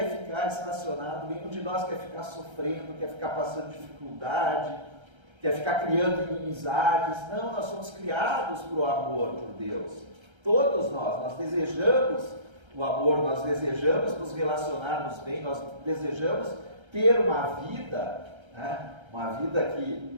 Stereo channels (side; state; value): left; late; 1.3 ms